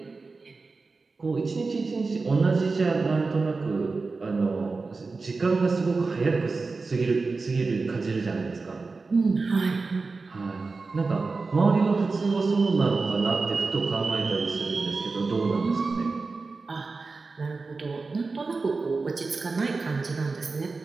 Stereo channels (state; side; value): quieter; left; 4.0 dB